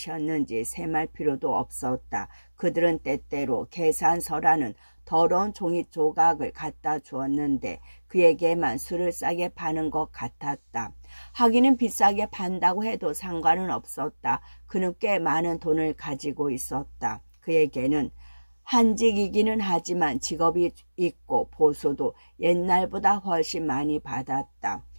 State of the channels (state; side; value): inverted; both; correlation -1.00